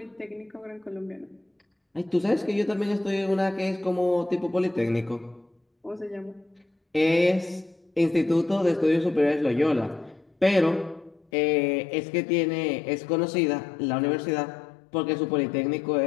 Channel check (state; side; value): drops out; right; at 11.2 s